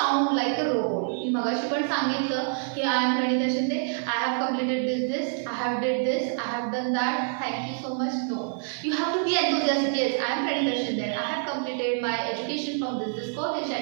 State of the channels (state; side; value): silent; left; digital silence